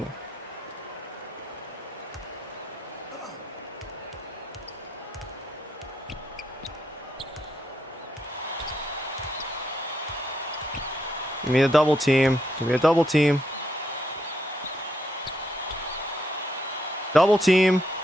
Give me a double team. Give me a double team. Double team.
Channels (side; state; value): both; normal; correlation 0.77